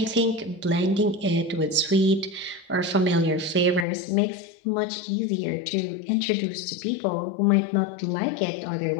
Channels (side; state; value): right; drops out; at 3.9 s